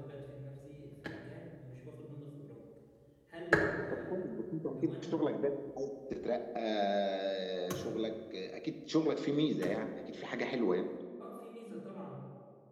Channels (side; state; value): both; identical; correlation 1.00